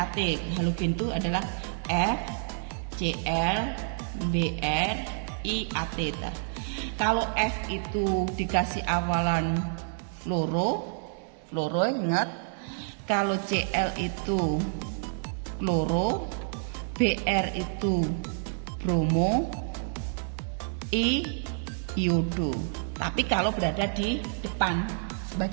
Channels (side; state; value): left; silent; 59 dB below the other